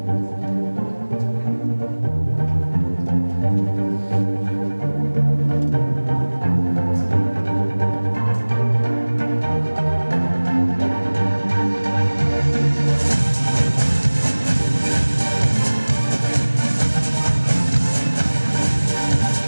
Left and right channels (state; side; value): inverted; both; correlation -1.00